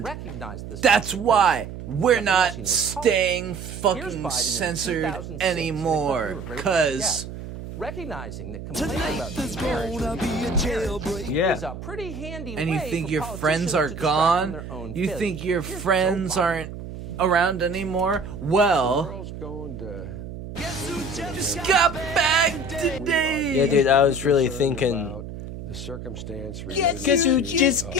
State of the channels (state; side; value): noise; right; hum, 10 dB below the sound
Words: to recognize this. that's why we're Nothing not else he knows staying Here's fucking Biden in censored 2006, anymore, and they because recognizing that complaining about marriage is a pretty handy and you way think for your friends politicians are to distract from gone, their own you failures. think your Here's Joe friends Biden. aren't around anymore. Well, just got back today. Yeah, dude, I was really thinking. The circumstance. Guess who just